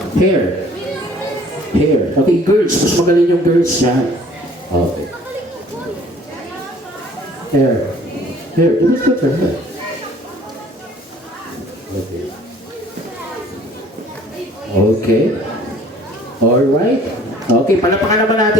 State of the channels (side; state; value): both; normal; correlation 0.54